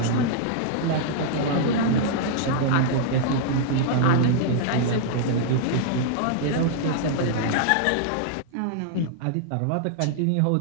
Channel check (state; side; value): different; both; correlation -0.01